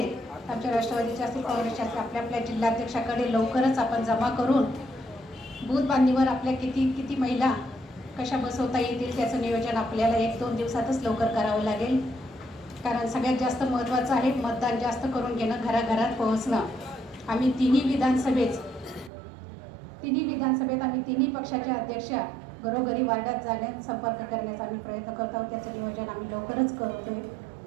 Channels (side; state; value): left; drops out; at 19.1 s